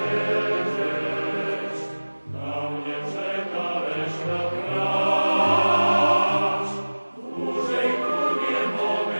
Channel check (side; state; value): both; inverted; correlation -1.00